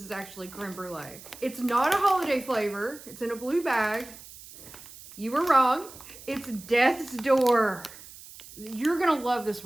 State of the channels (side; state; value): right; noise; hiss, 17 dB below the sound